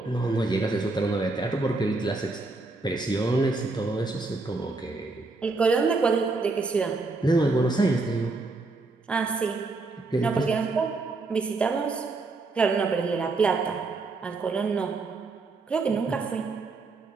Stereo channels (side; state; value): left; quieter; 3.6 dB